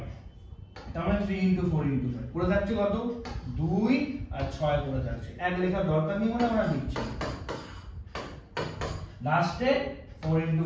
তার মানে 3 ইনটু 4 ইনটু 5 পড়ে থাকছে কত 2 আর 6 পড়ে থাকছে। এক লেখার দরকার নেই বলে আমরা লিখছি। লাস্টে 4 ইনটু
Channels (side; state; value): both; identical; correlation 1.00